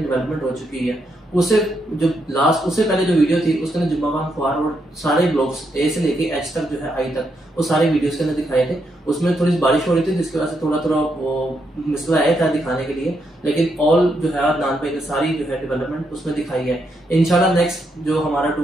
हो चुकी है। उससे पहले जो वीडियो थी उसके अंदर जुम्मा खान ख्वार और सारे ब्लॉक्स ए से लेके एच तक जो है आई तक वो सारे वीडियोस के अंदर दिखाए थे। उसमें थोड़ी बारिश हो रही थी जिसकी वजह से थोड़ा वो मिसला आया था दिखाने के लिए, लेकिन ऑल जो है नान पे सारी जो है डेवलपमेंट उसमें दिखाई है। इंशाल्लाह नेक्स्ट जो हमारा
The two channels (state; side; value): normal; both; correlation 0.79